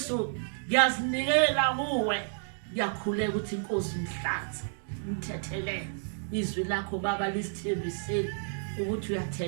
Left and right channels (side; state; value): left; silent; digital silence